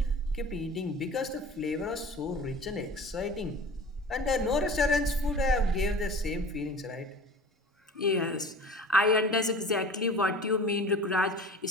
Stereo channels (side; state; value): both; normal; correlation 0.40